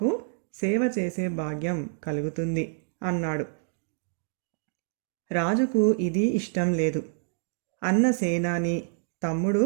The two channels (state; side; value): silent; left; digital silence